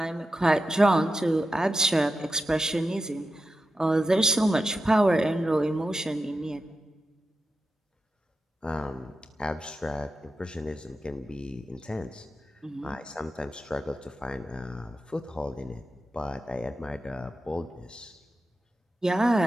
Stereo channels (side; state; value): both; normal; correlation 0.89